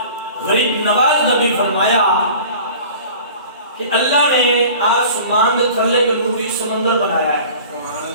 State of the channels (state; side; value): inverted; both; correlation -0.43